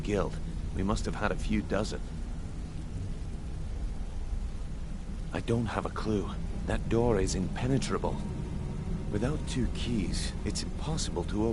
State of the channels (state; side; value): identical; both; correlation 1.00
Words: we must have had a few dozen. I don't have a clue. That door is impenetrable. Without 2 keys, it's impossible to